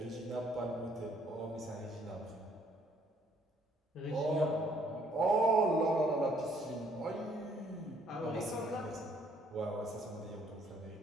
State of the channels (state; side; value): normal; both; correlation 0.65